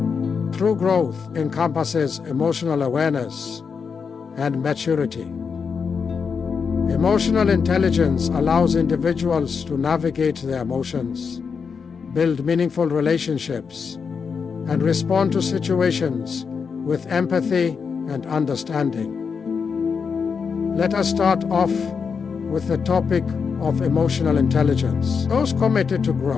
True growth encompasses emotional awareness and maturity. Emotional intelligence allows individuals to navigate their emotions, build meaningful relationships, and respond to situations with empathy and understanding. Let us start off with the topic of emotional intelligence. Those committed to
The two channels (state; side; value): quieter; right; 5.8 dB